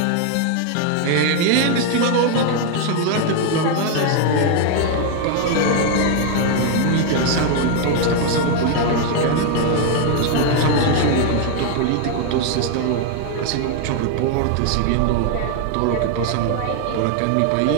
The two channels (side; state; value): both; different; correlation 0.00